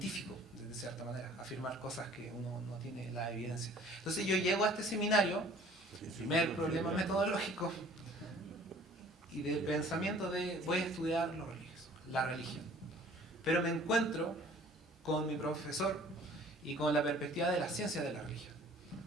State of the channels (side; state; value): both; normal; correlation 0.52